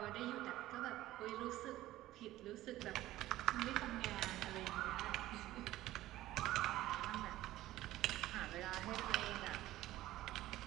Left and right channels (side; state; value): left; quieter; 15.5 dB